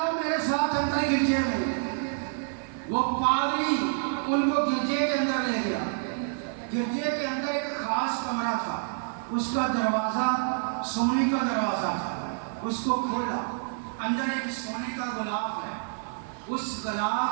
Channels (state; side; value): silent; left; 59 dB below the other